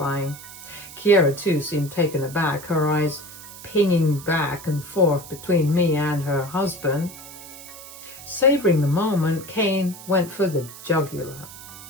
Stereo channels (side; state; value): right; noise; hiss, 15 dB below the sound